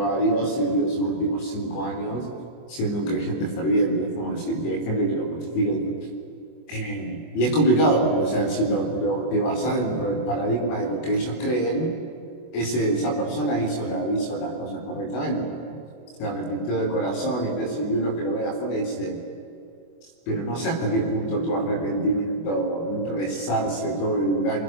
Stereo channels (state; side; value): late; right; 24 ms